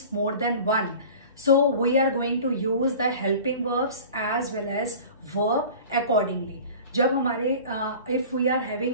more than one. So we are going to use the helping verbs as well as verb accordingly. जब हमारे if we are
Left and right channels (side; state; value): both; inverted; correlation -0.40